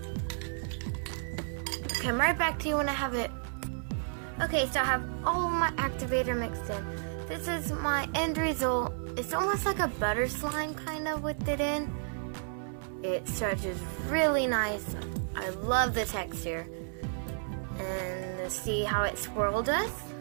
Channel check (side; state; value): left; silent; 56 dB below the other